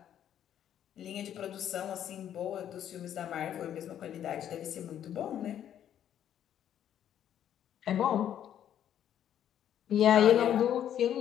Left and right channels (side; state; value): right; quieter; 10.3 dB